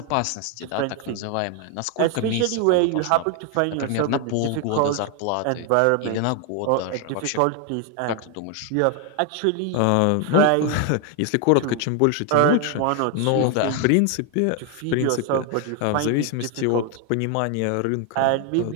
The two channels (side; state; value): both; different; correlation 0.01